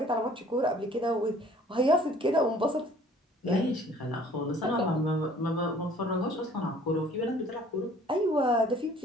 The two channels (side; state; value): both; normal; correlation 0.54